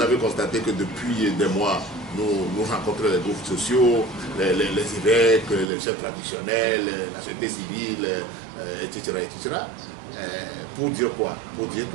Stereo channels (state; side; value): drops out; left; at 5.7 s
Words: constaté que depuis des mois, nous rencontrons les groupes sociaux, les évêques, les chefs traditionnels, la société civile, etc. Pour dire quoi? Pour dire